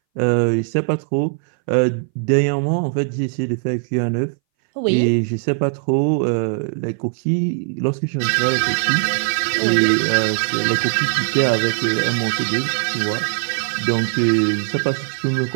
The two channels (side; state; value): left; silent; 63 dB below the other